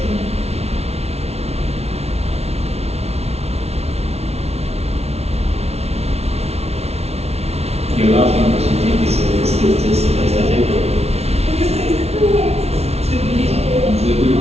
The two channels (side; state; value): left; late; 0.31 ms